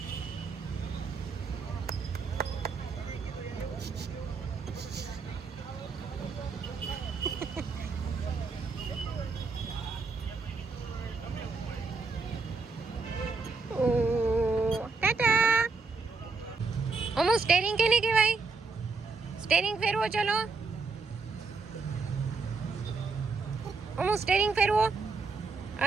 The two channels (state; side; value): quieter; left; 4.3 dB